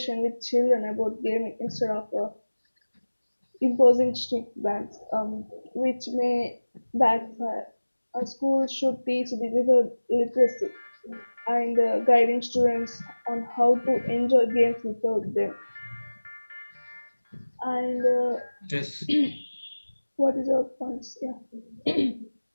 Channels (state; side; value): inverted; both; correlation -1.00